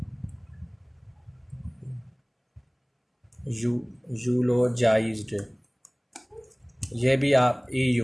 यूलोजाइज्ड, ये भी आप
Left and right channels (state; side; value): identical; both; correlation 1.00